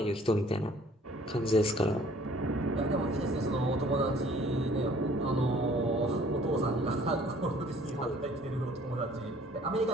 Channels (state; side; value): normal; both; correlation 0.55